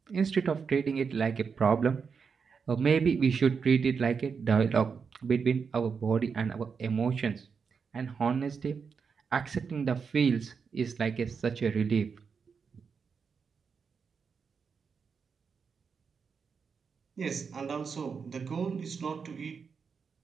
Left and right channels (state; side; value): quieter; left; 5.8 dB